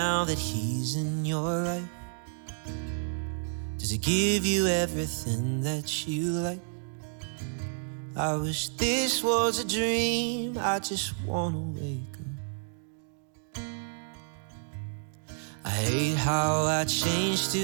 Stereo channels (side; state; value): left; silent; digital silence